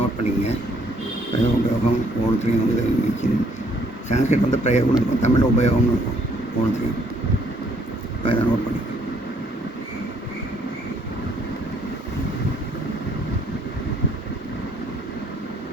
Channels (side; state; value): both; normal; correlation 0.66